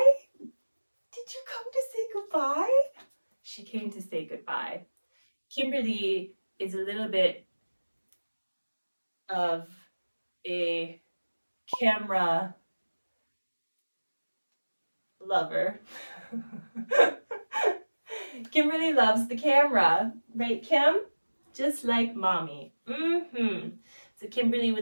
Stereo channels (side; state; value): both; inverted; correlation -1.00